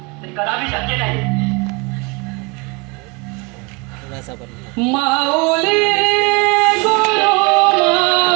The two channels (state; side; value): quieter; left; 28.7 dB